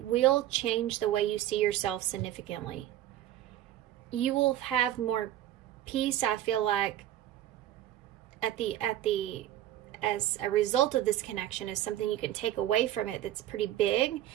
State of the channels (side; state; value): left; quieter; 13.0 dB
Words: will change the way you see yourself significantly. You will have more peace, I feel like, as a result of this connection. Is something you can take away from it that's pretty big,